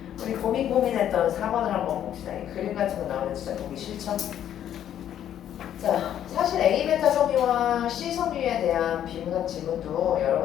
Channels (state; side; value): quieter; right; 10.5 dB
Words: 우리 고민했던 4번을 한번 봅시다. 이 그림 같은 거 나오면 진짜 보기 싫죠? 자, 사실 A베타 섬유와 C 섬유에 대한 비문학 지문도 여러